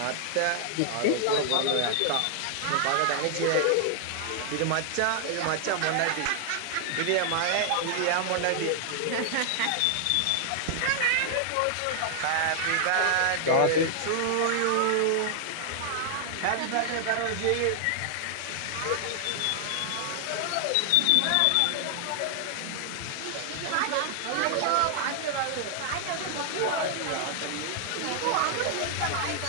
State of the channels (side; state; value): both; different; correlation 0.00